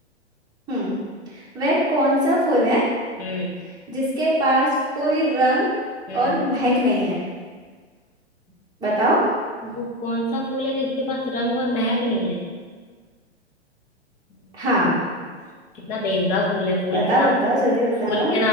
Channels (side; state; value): both; normal; correlation 0.24